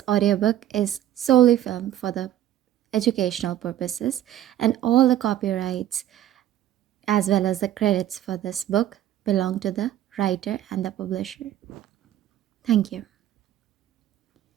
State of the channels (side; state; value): left; quieter; 12.0 dB